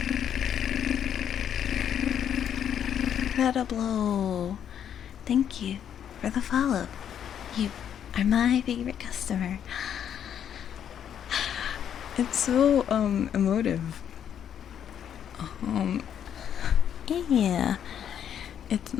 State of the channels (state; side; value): quieter; right; 9.2 dB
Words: Incredible! Thank you for the follow. You are my favorite customer. It's so emotive. Yeah. It's